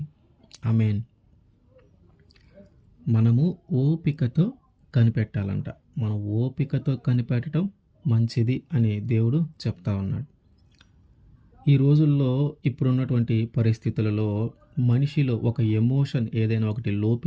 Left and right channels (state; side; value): identical; both; correlation 1.00